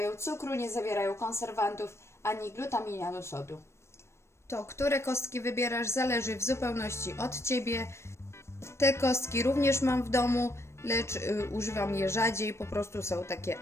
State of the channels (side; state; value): right; late; 0.13 ms